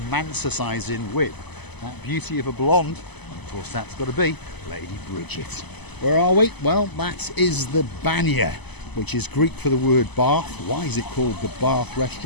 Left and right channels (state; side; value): late; right; 0.99 ms